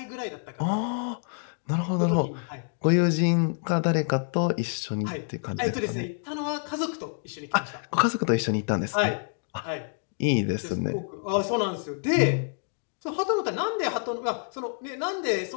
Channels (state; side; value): silent; right; 60 dB below the other